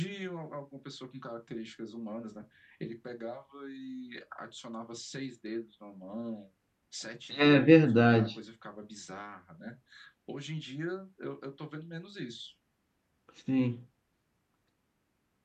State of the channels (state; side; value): identical; both; correlation 1.00